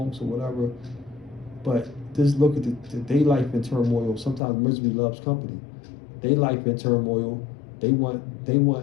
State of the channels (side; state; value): right; drops out; at 4.4 s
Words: or whatever. But just look at their life in turmoil. Sometimes misery loves company. Their life in turmoil. They want